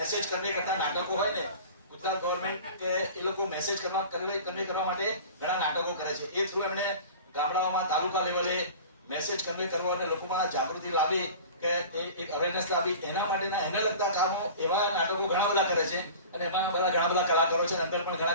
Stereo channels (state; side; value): inverted; both; correlation -0.38